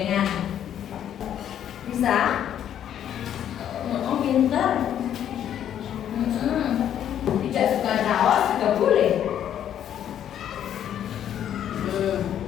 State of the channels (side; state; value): right; quieter; 10.1 dB